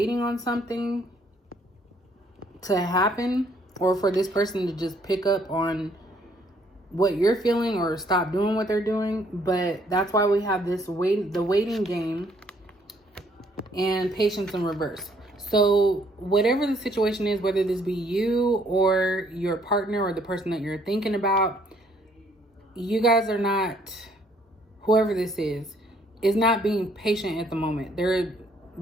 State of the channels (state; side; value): normal; both; correlation 0.65